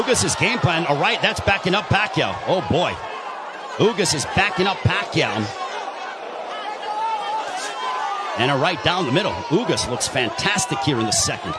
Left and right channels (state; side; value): identical; both; correlation 1.00